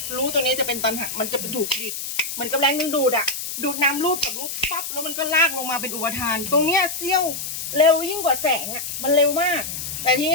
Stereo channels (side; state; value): left; noise; hiss, 6 dB below the sound